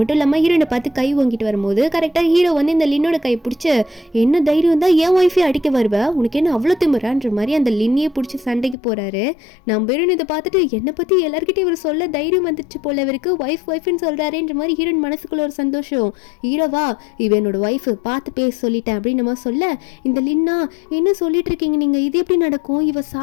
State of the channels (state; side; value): drops out; right; at 8.8 s